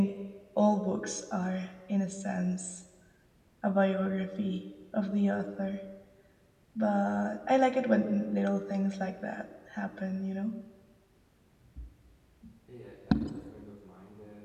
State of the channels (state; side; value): identical; both; correlation 1.00